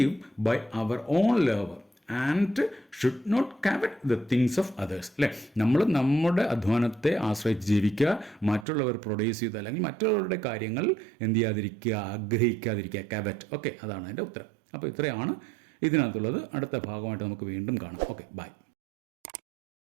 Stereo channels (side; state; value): left; drops out; at 8.7 s